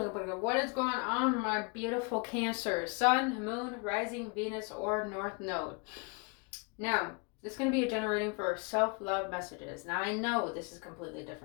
is going on, my beautiful Cancer? Sun, Moon, Rising, Venus, or North Node. Now, this is going to be a generating for self-love messages. Now, I know this is completely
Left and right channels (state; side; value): quieter; right; 32.1 dB